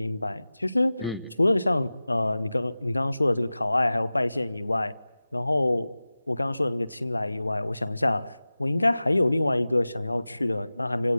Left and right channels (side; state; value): both; inverted; correlation -0.97